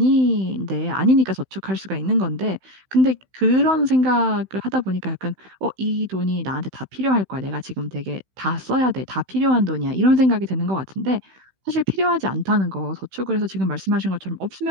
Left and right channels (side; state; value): left; late; 16 ms